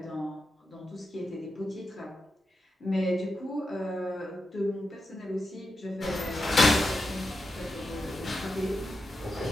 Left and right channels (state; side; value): normal; both; correlation 0.88